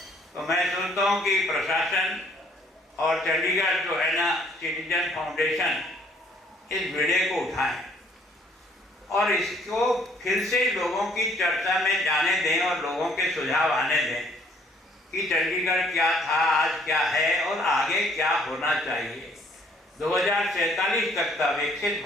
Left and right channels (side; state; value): both; normal; correlation 0.62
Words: तो मैं सोचता हूँ कि प्रशासन और चंडीगढ़ जो है ना सिटीजन फाउंडेशन इस वीडियो को उठाएं और इसको फिर से लोगों की चर्चा में जाने दें और लोगों के सुझाव आने दें कि चंडीगढ़ क्या था, आज क्या है और आगे क्या होना चाहिए। 2047 तक का विकसित